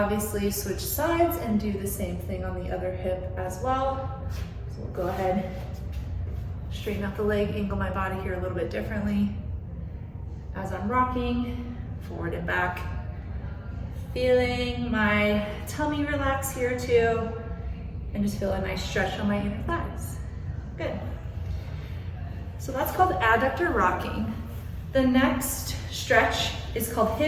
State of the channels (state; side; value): identical; both; correlation 1.00